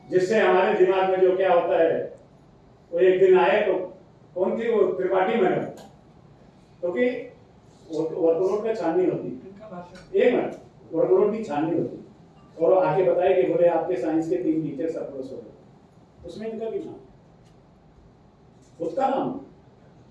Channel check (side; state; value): both; identical; correlation 1.00